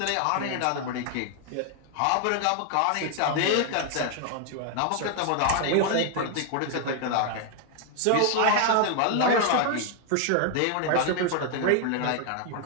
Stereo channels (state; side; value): different; both; correlation 0.00